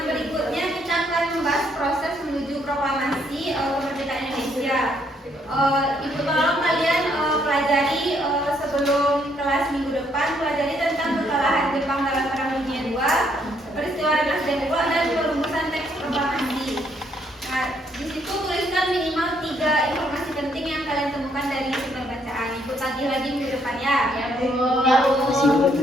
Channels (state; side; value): normal; both; correlation 0.71